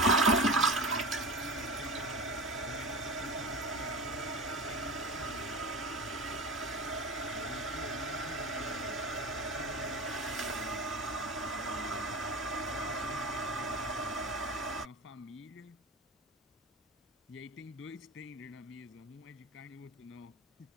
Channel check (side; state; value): both; normal; correlation 0.28